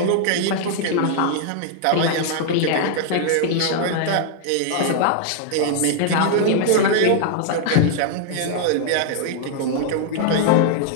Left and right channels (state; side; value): different; both; correlation 0.00